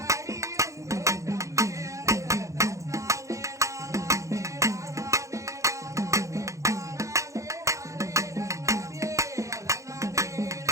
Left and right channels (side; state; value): left; late; 0.15 ms